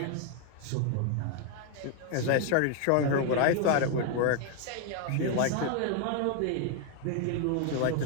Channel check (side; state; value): both; different; correlation 0.00